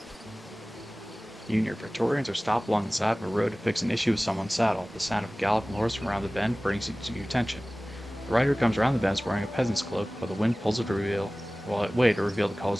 You and your Praetorians are stopped along the side of a road to fix an issue with someone's saddle. The sound of a galloping horse from around the bend brings you to your attention. The rider comes around the bend wearing a peasant's cloak, but the wind pulls it to reveal the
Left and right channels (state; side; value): normal; both; correlation 0.98